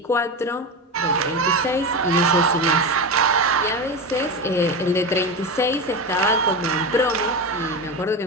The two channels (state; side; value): normal; both; correlation 0.20